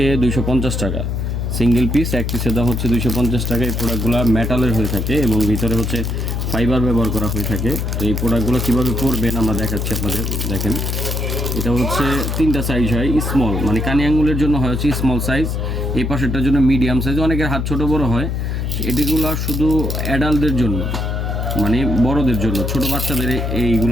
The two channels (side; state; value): left; noise; hum, 1 dB below the sound